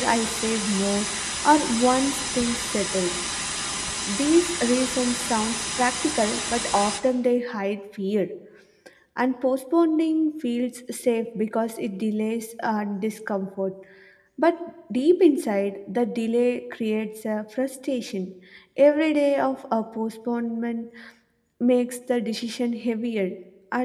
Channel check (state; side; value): identical; both; correlation 1.00